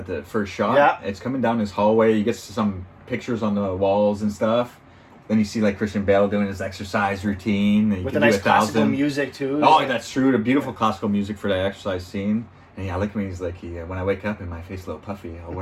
the first shot. Yeah, it's coming down his hallway. You get some pictures on the walls and stuff. Then you see Christian Bale doing his exercise routine. With the nice classical music too. Oh, that's true. The beautiful classical music for that exercise scene. And I like when he's like, when I wake up and my face a little puffy, I'll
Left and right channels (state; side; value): identical; both; correlation 1.00